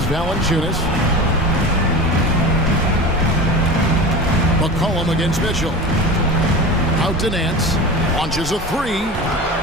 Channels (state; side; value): normal; both; correlation 0.31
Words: Valanciunas. McCollum against Mitchell. Out to Nance. Launches a 3.